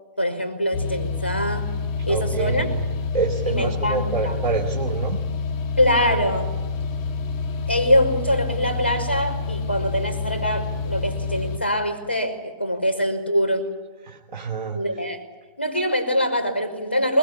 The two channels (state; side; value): inverted; both; correlation -0.61